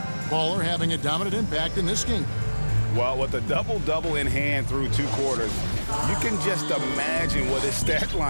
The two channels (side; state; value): both; inverted; correlation -1.00